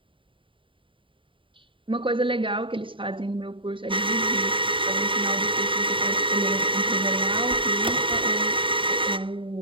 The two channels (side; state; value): left; late; 0.25 ms